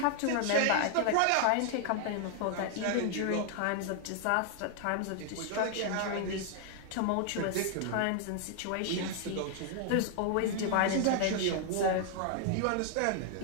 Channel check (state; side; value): different; both; correlation 0.00